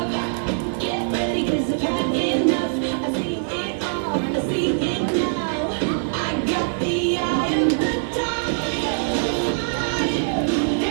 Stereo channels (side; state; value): left; silent; digital silence